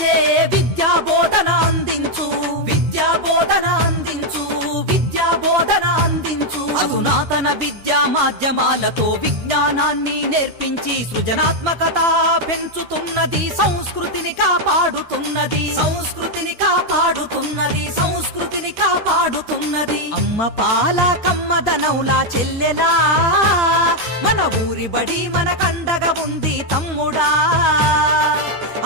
విద్యా బోధన అందించు, విద్యా బోధన అందించు, విద్యా బోధన అందించు. అధునాతన విద్యా మాధ్యమాలతో విజ్ఞానాన్ని నేర్పించి సృజనాత్మకత పెంచుతున్నది, సంస్కృతిని కాపాడుతున్నది, సంస్కృతిని కాపాడుతున్నది, సంస్కృతిని కాపాడుతున్నది. అమ్మ పాల కమ్మదనౌలా చెల్లెలా, మన ఊరి బడి మన కండగా ఉంది తమ్ముడా.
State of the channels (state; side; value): late; left; 13 ms